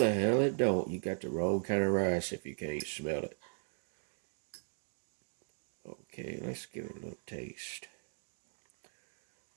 hell it don't. You got the wrong kind of rice if you can't smell it. Okay, let's give it a little taste.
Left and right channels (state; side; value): silent; left; digital silence